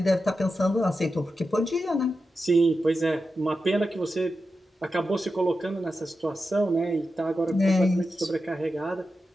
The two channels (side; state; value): both; normal; correlation 0.90